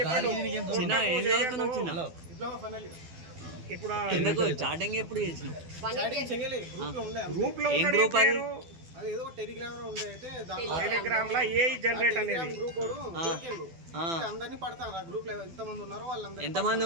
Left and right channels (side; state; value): left; late; 12 ms